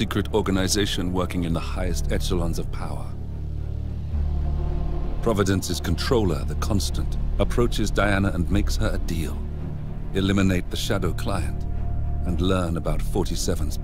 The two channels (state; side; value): identical; both; correlation 1.00